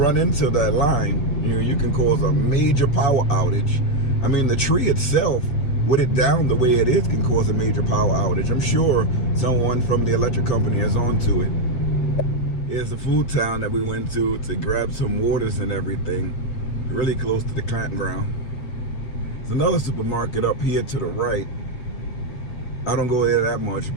into that line, you can cause a major power outage. I mean, the tree itself, with it down the way it is, can cause a major power outage. I'm sure someone from the electric company is onto it. Here's the food town that we went to grab some waters and everything, really close to the campground. There's another supermarket up here to the right. I don't go there that much,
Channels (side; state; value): right; late; 8.3 ms